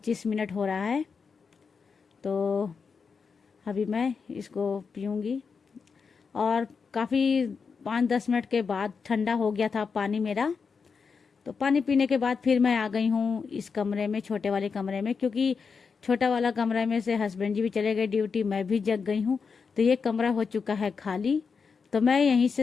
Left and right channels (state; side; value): quieter; right; 5.5 dB